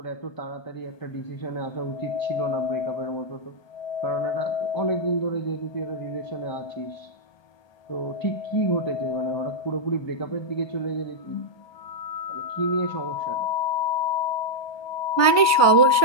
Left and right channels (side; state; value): right; late; 1.2 ms